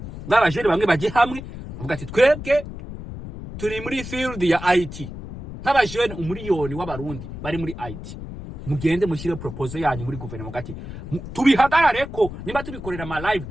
nk'abajene bamwe bajye hamwe bavuga ati twebwe turi muri field ya IT, nk'abajene umuriyoni w'abarundi bari muri IT, mugende mushyire proposal yanyu muri guverinoma gati tubihagarare ko niba tubikorera ama live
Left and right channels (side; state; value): left; noise; rumble, 10 dB below the sound